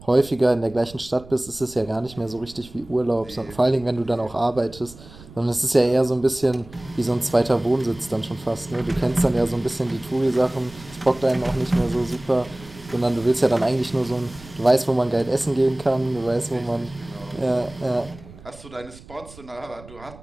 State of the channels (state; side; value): noise; right; rumble, 20 dB below the sound